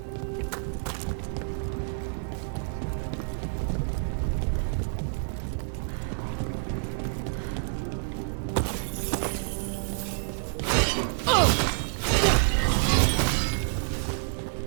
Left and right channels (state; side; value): silent; left; 59 dB below the other